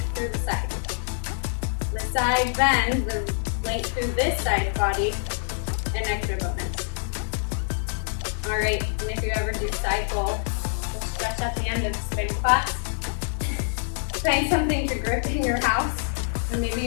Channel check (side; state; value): right; silent; 57 dB below the other